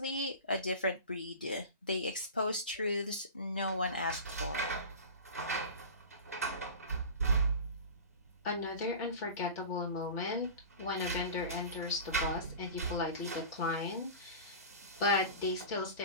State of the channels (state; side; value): inverted; both; correlation -0.33